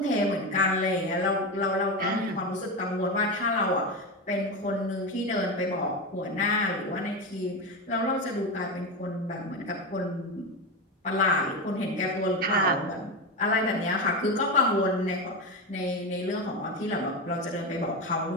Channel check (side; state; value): both; normal; correlation 0.17